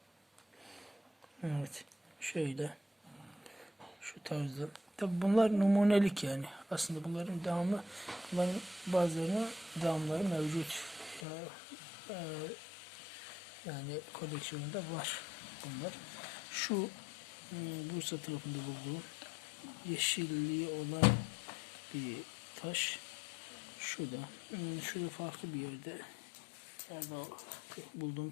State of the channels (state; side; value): drops out; right; at 11.2 s